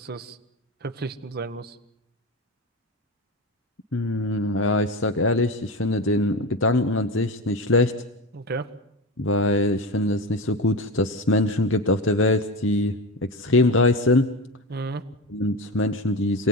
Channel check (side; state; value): both; normal; correlation 0.22